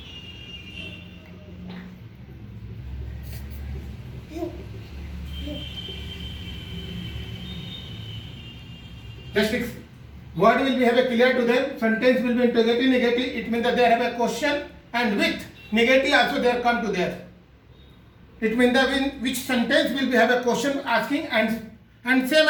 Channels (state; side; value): identical; both; correlation 1.00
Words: Just fix. Word will be have a clear to them. Sentence will be interrogative negative. It means that they have a question and with negative also they come to there. It means that which sentence will be have a question asking and